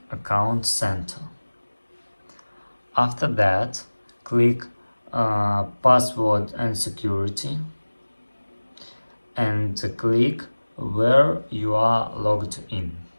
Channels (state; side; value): inverted; both; correlation -1.00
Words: Account Center. After that click Password and Security and click where you are logged in.